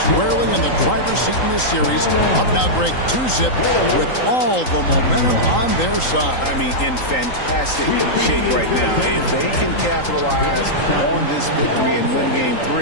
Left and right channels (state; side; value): late; right; 3.8 ms